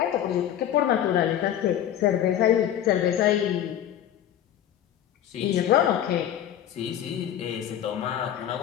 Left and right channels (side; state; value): right; quieter; 10.8 dB